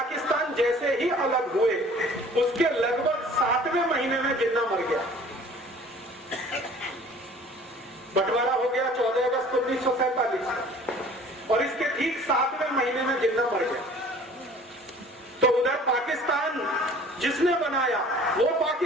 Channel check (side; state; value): both; normal; correlation 0.49